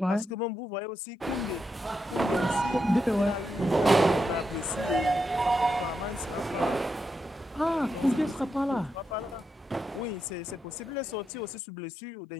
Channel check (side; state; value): both; normal; correlation 0.84